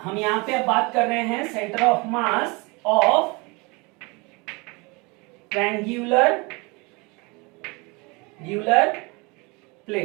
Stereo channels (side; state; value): left; quieter; 27.4 dB